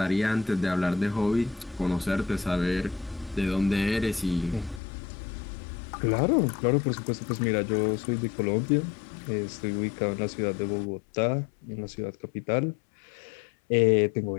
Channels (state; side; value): drops out; right; at 4.8 s